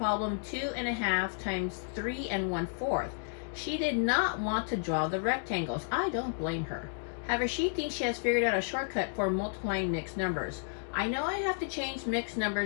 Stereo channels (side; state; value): right; silent; digital silence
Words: 2.5 times 3 1/4. She did not want to draw the rectangles. I don't blame her. However, she thinks she has figured out a shortcut for multiplying mixed numbers. I know I have to change mixed